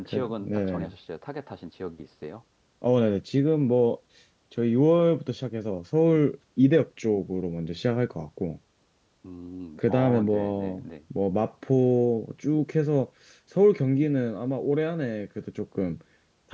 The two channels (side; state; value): both; identical; correlation 1.00